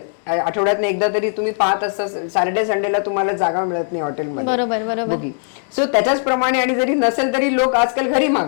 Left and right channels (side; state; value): right; silent; digital silence